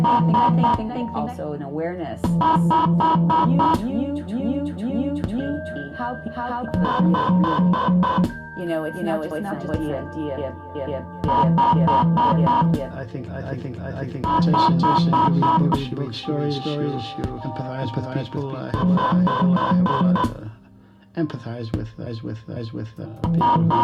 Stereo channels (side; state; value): both; identical; correlation 1.00